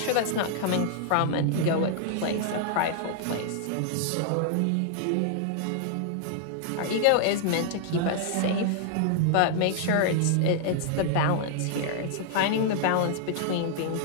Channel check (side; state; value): both; different; correlation -0.01